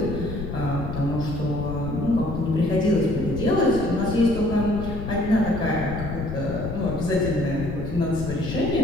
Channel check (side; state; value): left; noise; rumble, 6 dB below the sound